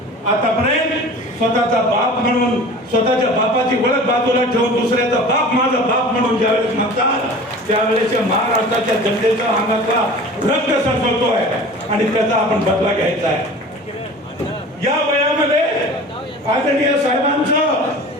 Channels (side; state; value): both; normal; correlation 0.40